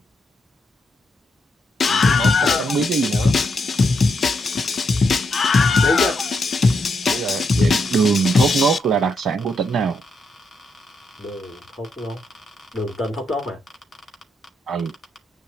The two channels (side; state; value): both; normal; correlation 0.80